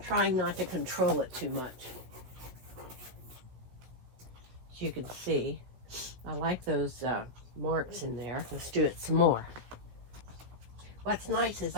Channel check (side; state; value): left; late; 16 ms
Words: not to control it too much. As you can see, I like those marks in there. Let's do it some more. What's nice is